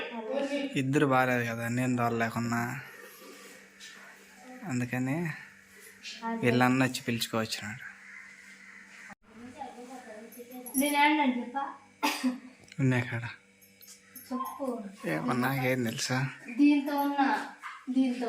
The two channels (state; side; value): identical; both; correlation 1.00